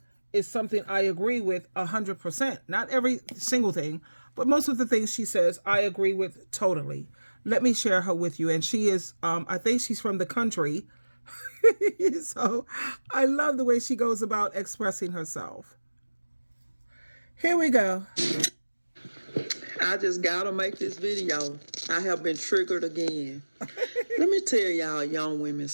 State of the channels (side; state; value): both; inverted; correlation -1.00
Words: is something I agree with 100%. Not every single thing, but most of the things she says I agree with totally. Let me share her with you. And she is, I think she's from the country. So I love the way she goes about expressing herself. Here we go. I just gotta make this video. I have been triggered again. Let me tell y'all young women